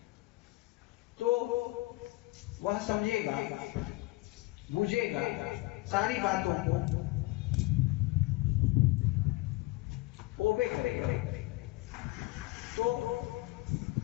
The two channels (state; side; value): quieter; right; 21.0 dB